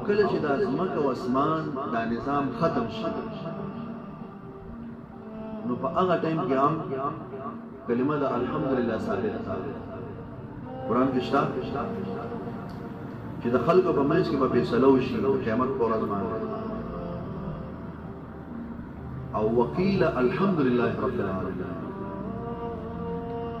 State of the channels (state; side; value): identical; both; correlation 1.00